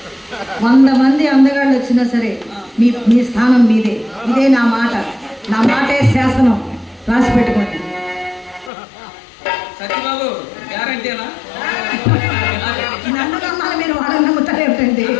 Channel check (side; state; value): right; drops out; at 8.7 s